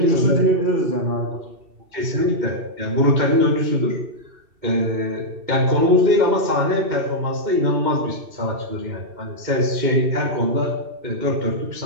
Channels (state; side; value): late; left; 2.7 ms